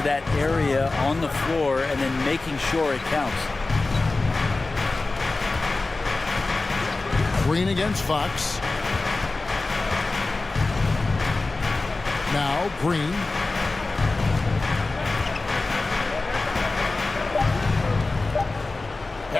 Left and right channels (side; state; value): right; quieter; 3.4 dB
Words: that area on the floor and then making sure it counts. Green against Fox. Now Green.